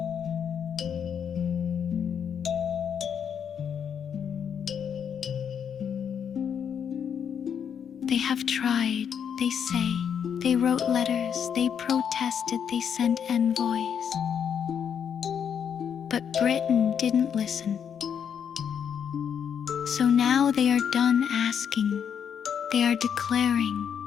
They have tried, they say. They wrote letters, they protested, they sent envoys. But Britain didn't listen. So now they are done asking. They are declaring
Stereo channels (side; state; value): right; quieter; 7.9 dB